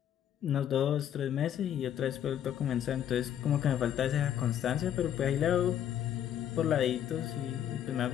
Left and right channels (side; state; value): right; quieter; 10.2 dB